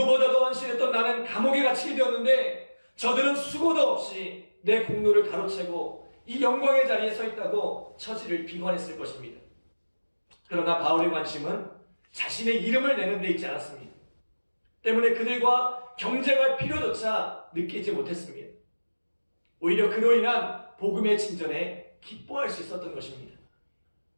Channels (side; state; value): both; inverted; correlation -1.00